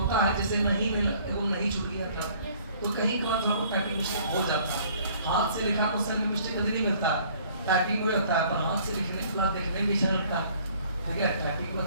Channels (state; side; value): inverted; both; correlation -0.57